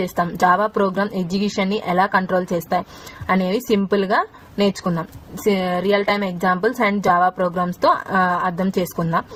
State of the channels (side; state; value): both; identical; correlation 1.00